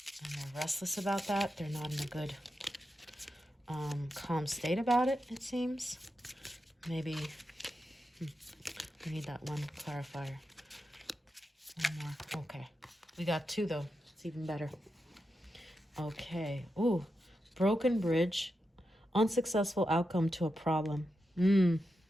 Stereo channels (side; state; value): both; normal; correlation 0.88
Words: they're restless about that. They're not in a good calm state about it, it seems. Maybe we need that 1 clarifier. 1 more. Okay. We got 2 though. It's even better. Okay. Ooh. Broken bridge. Unsuccessful outcome to a problem.